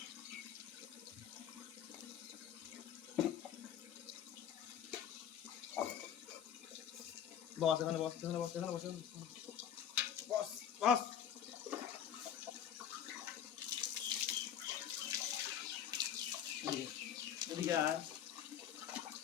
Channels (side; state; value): right; quieter; 9.3 dB